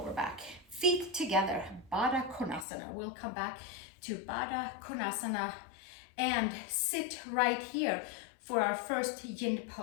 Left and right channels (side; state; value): right; drops out; at 2.7 s